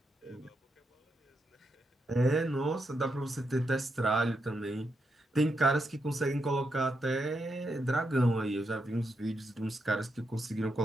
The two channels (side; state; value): both; normal; correlation 0.83